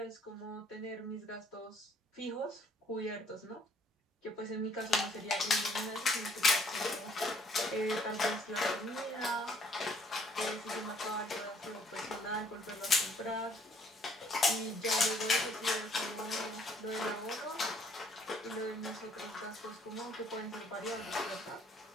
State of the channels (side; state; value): both; normal; correlation 0.63